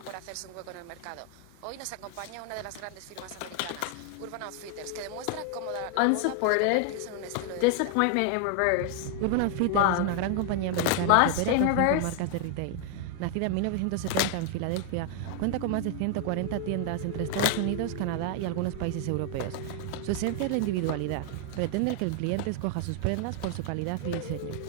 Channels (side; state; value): both; different; correlation 0.00